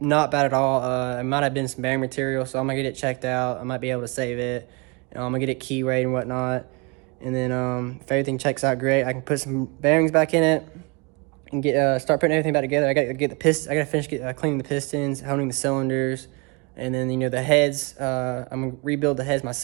not bad at all. It might have been some bearing material, so I'm gonna get it checked out. I might be able to save it. I'm gonna get it key weighed and whatnot, and then if everything checks out great, I can put some bearings back in it and start putting everything back together. I gotta get the piston. I gotta finish cleaning the pistons, honing the cylinders, and then you know the heads. I'm gonna rebuild the heads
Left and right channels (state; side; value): quieter; left; 30.4 dB